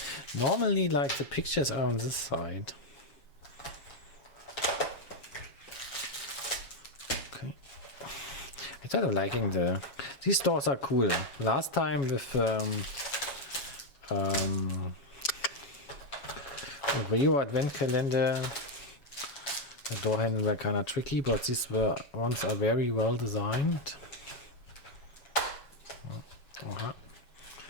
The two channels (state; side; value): late; right; 7.3 ms